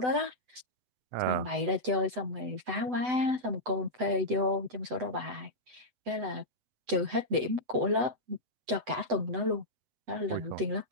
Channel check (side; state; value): left; late; 8.0 ms